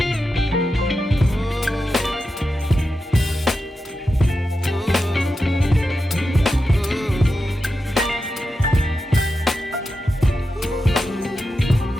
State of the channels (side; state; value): both; normal; correlation 0.89